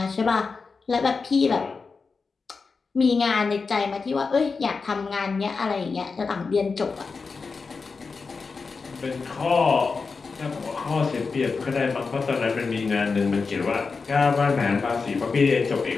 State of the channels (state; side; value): quieter; right; 4.7 dB